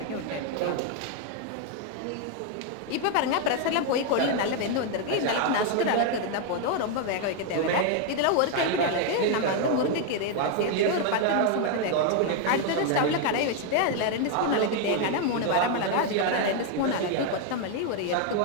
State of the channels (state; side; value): different; both; correlation 0.01